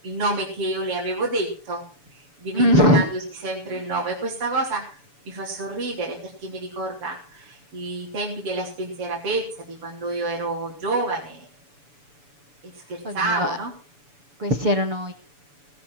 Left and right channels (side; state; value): left; late; 7.0 ms